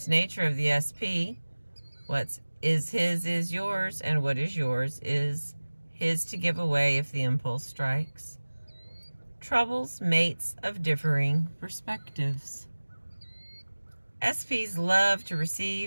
nature of the SP, what is his is yours, and what is yours is his to give away if the impulse strikes, troubles mates of differing perspectives. SPs love to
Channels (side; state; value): both; inverted; correlation -1.00